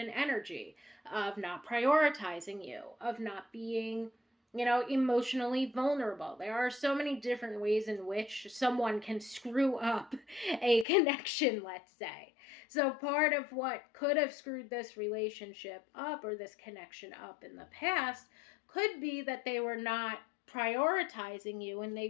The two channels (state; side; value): drops out; right; at 10.9 s